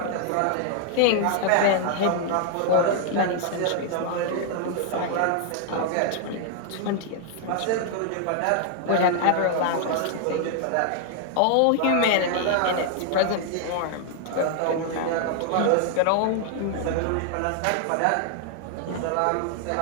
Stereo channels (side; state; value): both; different; correlation 0.00